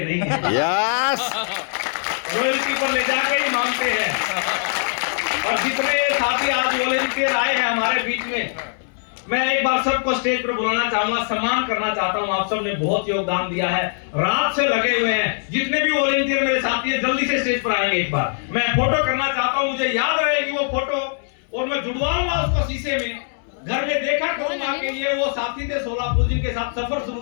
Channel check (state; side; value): silent; right; 64 dB below the other